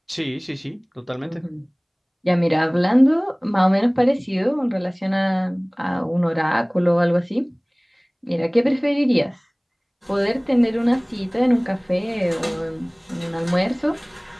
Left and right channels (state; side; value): identical; both; correlation 1.00